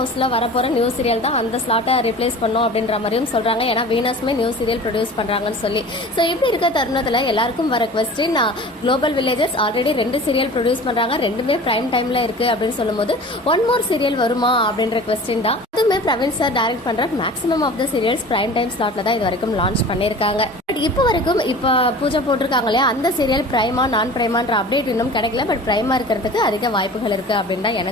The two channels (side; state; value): both; normal; correlation 0.40